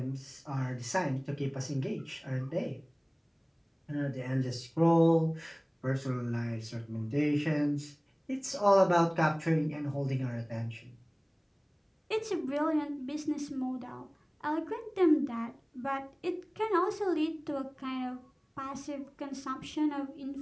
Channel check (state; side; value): identical; both; correlation 1.00